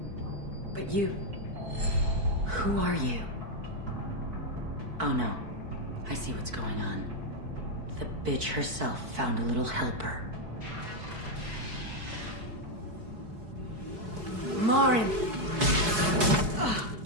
But you... Who are you? Oh no. I see what's going on. The bitch herself found a little helper. Morinth!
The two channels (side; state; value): left; late; 4.6 ms